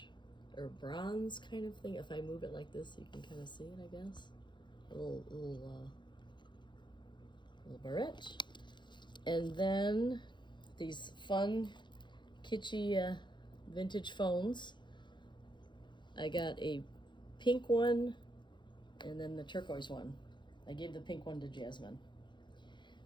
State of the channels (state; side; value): late; right; 0.22 ms